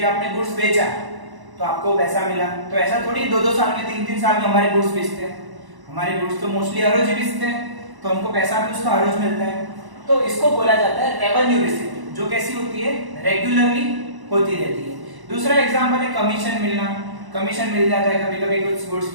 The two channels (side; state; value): left; late; 1.0 ms